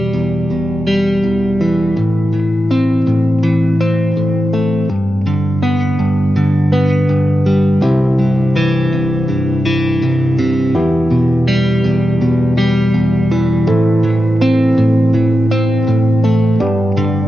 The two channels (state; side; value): normal; both; correlation 0.90